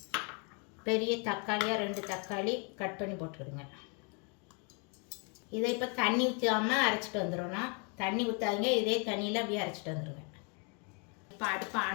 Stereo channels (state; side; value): quieter; right; 36.0 dB